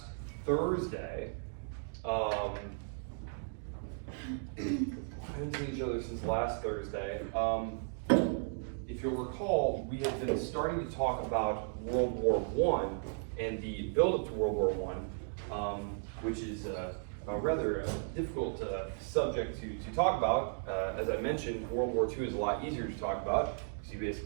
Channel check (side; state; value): left; silent; digital silence